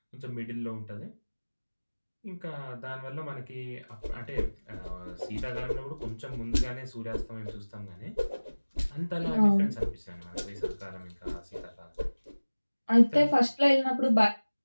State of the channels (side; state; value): both; inverted; correlation -1.00